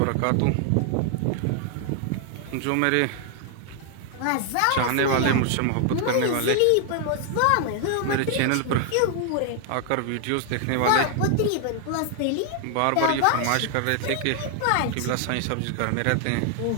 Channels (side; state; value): both; different; correlation 0.00